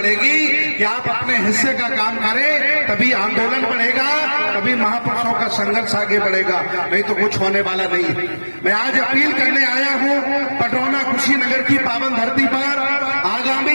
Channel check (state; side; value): inverted; both; correlation -1.00